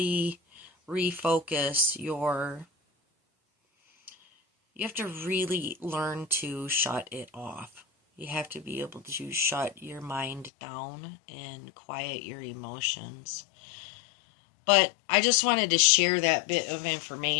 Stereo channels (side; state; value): right; drops out; at 10.5 s